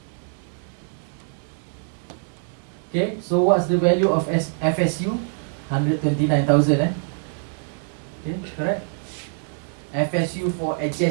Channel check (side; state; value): left; silent; 62 dB below the other